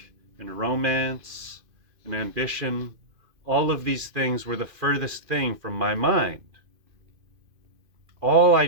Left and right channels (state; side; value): late; left; 2.5 ms